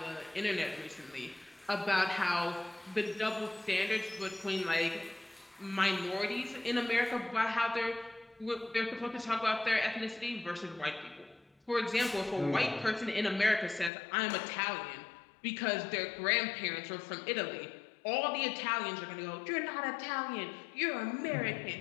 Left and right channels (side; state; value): right; drops out; at 13.9 s